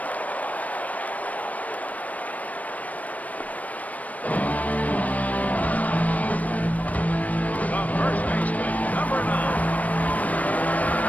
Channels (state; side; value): late; right; 0.071 ms